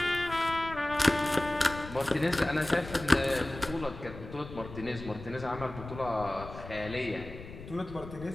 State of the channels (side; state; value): left; noise; rumble, 13 dB below the sound